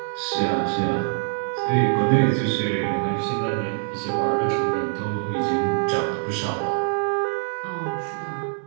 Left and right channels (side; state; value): left; silent; digital silence